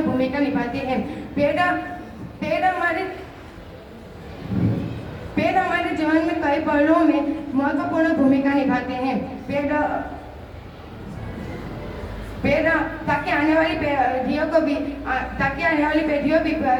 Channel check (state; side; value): identical; both; correlation 1.00